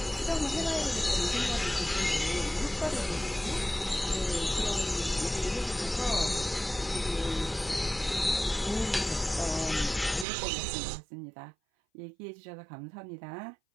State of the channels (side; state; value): left; drops out; at 10.2 s